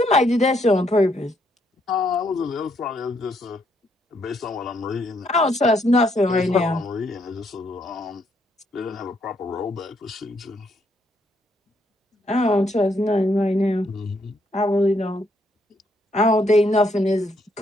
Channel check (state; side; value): normal; both; correlation 0.73